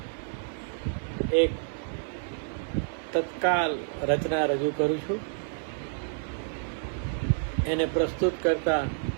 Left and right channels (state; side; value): silent; left; 59 dB below the other